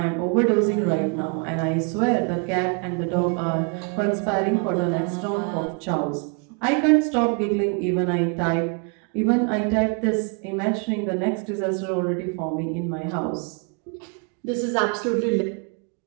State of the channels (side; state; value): left; quieter; 37.3 dB